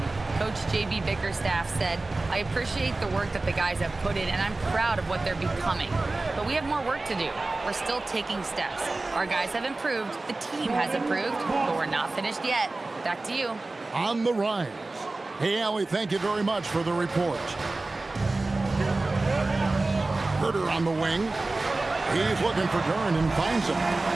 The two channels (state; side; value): quieter; left; 3.2 dB